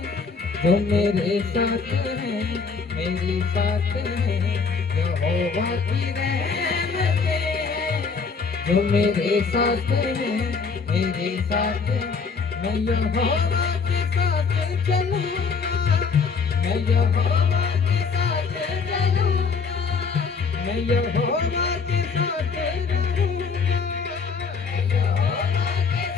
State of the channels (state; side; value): quieter; right; 5.2 dB